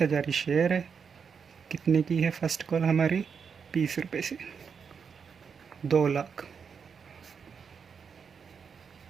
ही शेयर है। कितने की है फर्स्ट कॉल हमारी? 20 रुपये से। 2 लाख।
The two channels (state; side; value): quieter; left; 6.3 dB